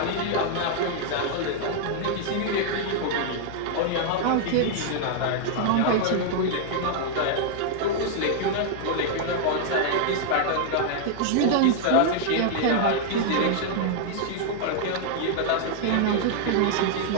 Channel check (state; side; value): different; both; correlation -0.01